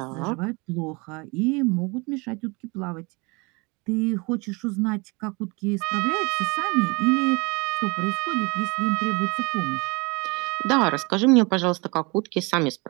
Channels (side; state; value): left; quieter; 27.6 dB